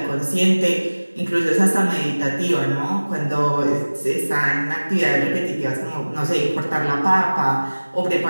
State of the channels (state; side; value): inverted; both; correlation -1.00